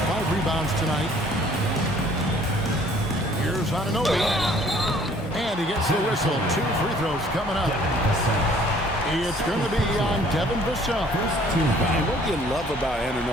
rebounds tonight. Here's Anunoby. And he gets the whistle. 2 free throws coming up. It's going to be on Devin Vassell. And what you love about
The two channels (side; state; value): both; normal; correlation 0.57